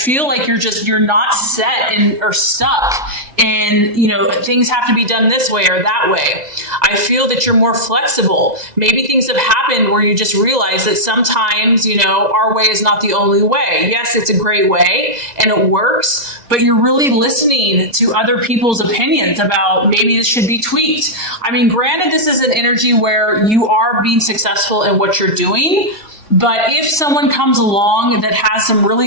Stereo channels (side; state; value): left; late; 1.9 ms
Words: like you're not set or stuck in, things have to be done this way or that way. I feel that you're more flexible. Maybe things have happened where you just realize that sometimes, our way is not the only way. Yes, it's a great way and it works, but you're really listening to other people's opinions about maybe this should be tweaked. I mean, granted, this is an energy where you are being successful in what you're doing, But if someone comes along that has some